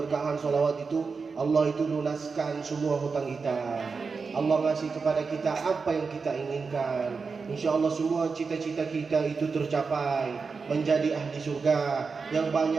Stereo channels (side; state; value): left; quieter; 4.8 dB